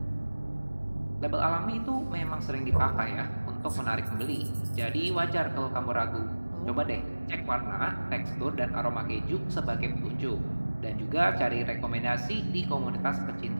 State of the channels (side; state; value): both; inverted; correlation -1.00